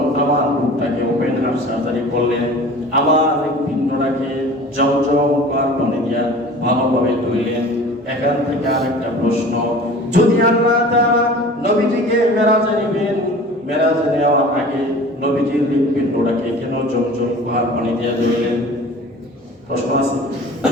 আমার বুকটাকে ওপেন হার্ট সার্জারি করলেন। আমার পিণ্ডটাকে জমজম পানি দিয়া ভালোভাবে ধুইলেন। এখান থেকে আরেকটা প্রশ্ন, যদি আল্লাহ তাআলা নবীজিকে মেরাজে নেবেন, মেরাজে নেওয়ার আগে নবীজির হৃৎপিণ্ডটাকে কেন জমজম পানি দিয়া ধুইলেন? প্রশ্ন আছে।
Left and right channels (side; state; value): both; normal; correlation 0.42